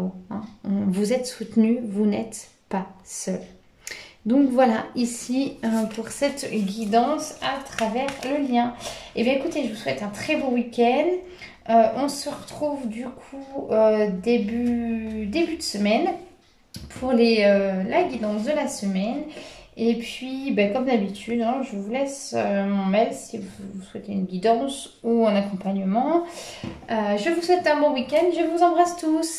Hein. Vous êtes soutenu, vous n'êtes pas seul. Donc voilà, ici pour cette guidance à travers le lien. Et bien écoutez, je vous souhaite un très beau week-end. On se retrouve du coup début de semaine pour la guidance de la semaine. Et puis, ben, comme d'habitude, hein, je vous laisse mon mail si vous souhaitez une guidance ou un accompagnement. Je vous souhaite un bon week-end. Je vous embrasse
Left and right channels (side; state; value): both; identical; correlation 1.00